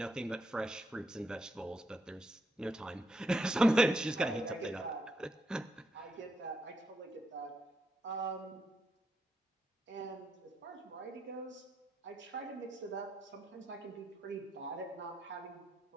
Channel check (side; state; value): both; normal; correlation 0.80